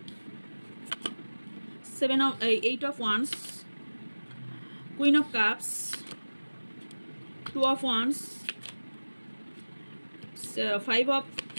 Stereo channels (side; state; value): both; inverted; correlation -1.00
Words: Eight of Wands, Queen of Cups, Two of Wands, Five of